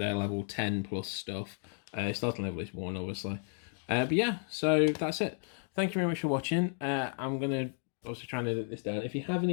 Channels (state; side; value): silent; right; 56 dB below the other